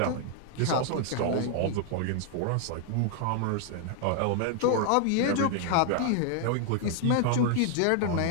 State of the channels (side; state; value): both; different; correlation 0.00